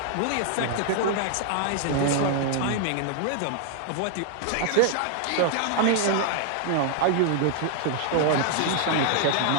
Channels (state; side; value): different; both; correlation 0.00